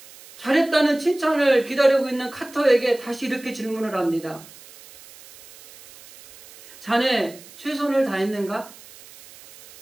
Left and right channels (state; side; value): noise; right; hiss, 21 dB below the sound